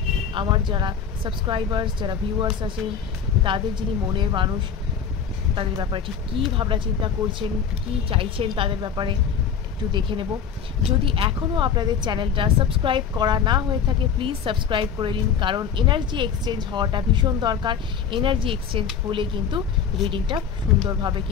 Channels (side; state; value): right; quieter; 7.2 dB